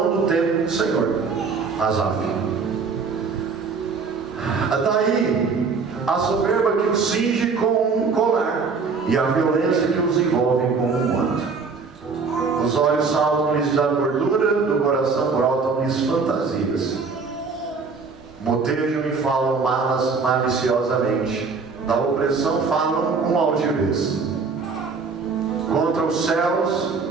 do templo do Senhor. Asaf. Daí a soberba que os cinge com um colar, e a violência que os envolve com um manto. Os olhos saltam-lhes da gordura, do coração brotam-lhes fantasias. Motejam e falam malas maliciosamente, da opressão falam com altivez. Contra os céus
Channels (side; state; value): left; quieter; 4.8 dB